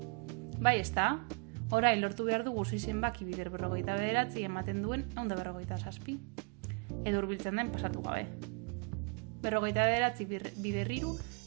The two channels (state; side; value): quieter; left; 36.3 dB